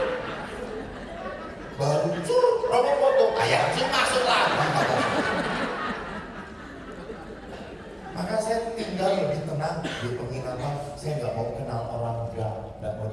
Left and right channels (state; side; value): identical; both; correlation 1.00